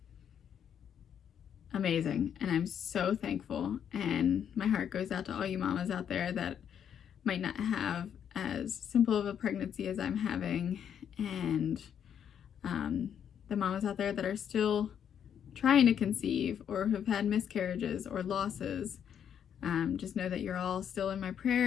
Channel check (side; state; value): right; quieter; 8.7 dB